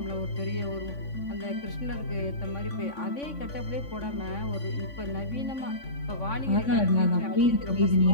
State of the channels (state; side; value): late; right; 3.5 ms